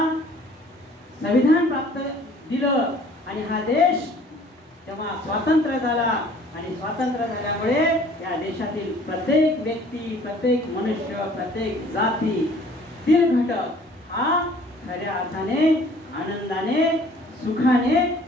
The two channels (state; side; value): normal; both; correlation 0.53